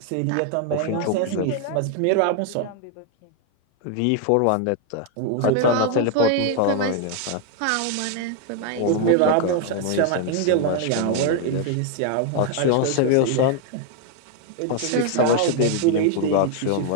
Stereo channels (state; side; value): different; both; correlation 0.00